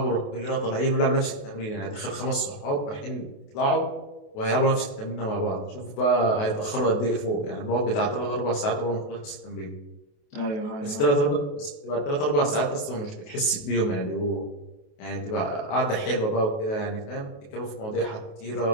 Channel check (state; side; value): late; right; 28 ms